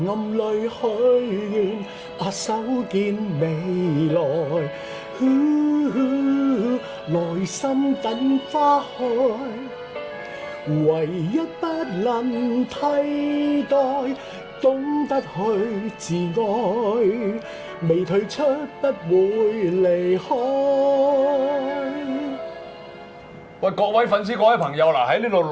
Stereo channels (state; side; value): identical; both; correlation 1.00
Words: 暗裏許願，手見未來，內心等花開。唯一不能替代，懂得去自愛，未退出不會離開。喂，各位粉絲、各位朋友嗱，喺呢度